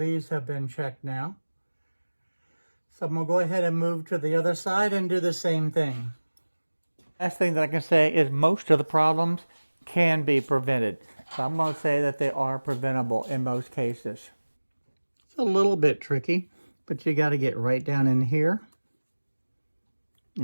have been checked now. So I'm going to go ahead and move to the other side and do the same thing. Last thing that I can say is most of the problems can be prevented. So I'm going to say that they are preventable in most cases. It's a little bit tricky, but you got to get right down in here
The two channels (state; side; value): inverted; both; correlation -1.00